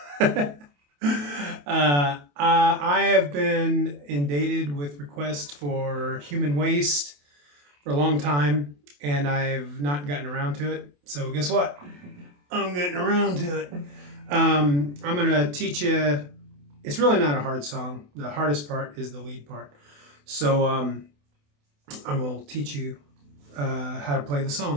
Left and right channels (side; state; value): left; late; 28 ms